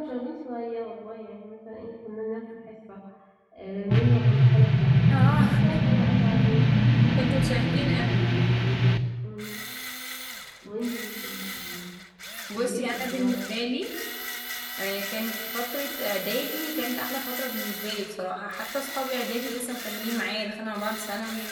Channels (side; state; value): both; identical; correlation 1.00